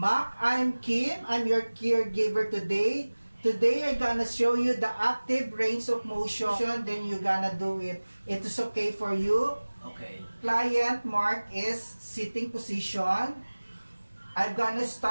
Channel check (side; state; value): both; inverted; correlation -1.00